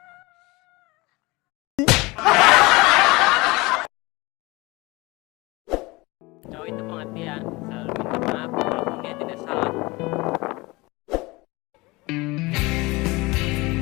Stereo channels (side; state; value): right; quieter; 23.2 dB